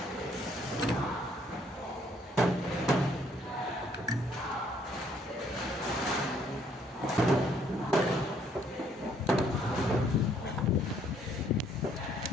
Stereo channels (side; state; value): both; normal; correlation 0.66